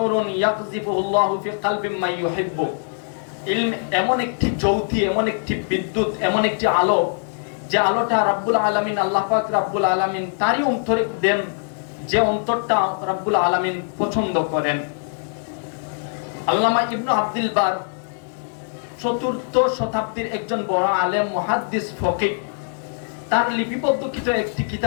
ইয়াকযিফুহুল্লাহু ফি কলবি মান ইউহিব্বু। ইলম এমন একটি জ্যোতি, এমন একটি বিদ্যুৎ, এমন একটি আলো, যে আলোটা রব্বুল আলামিন, আল্লাহ পাক রব্বুল আলামিন তারই অন্তরে দেন, যে অন্তরটা রব্বুল আলামিন পছন্দ করেন। আল্লামা ইবনে আব্দুল বার চতুর্থ শতাব্দীর একজন বড় আলেম, মুহাদ্দিস, ফকিহ, তার লিপিবদ্ধকৃত একটি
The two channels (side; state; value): right; silent; 64 dB below the other